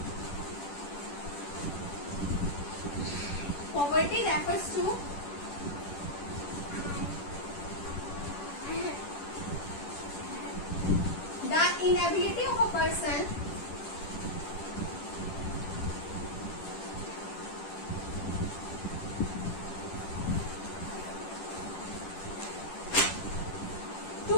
poverty refers to the inability of a person to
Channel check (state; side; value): late; right; 10 ms